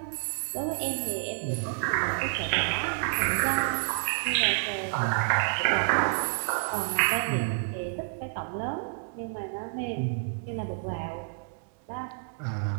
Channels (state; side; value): silent; left; digital silence